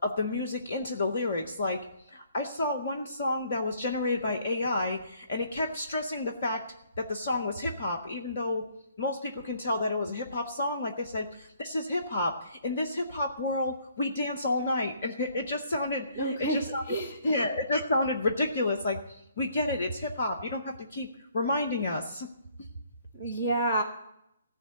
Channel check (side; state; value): both; inverted; correlation -0.63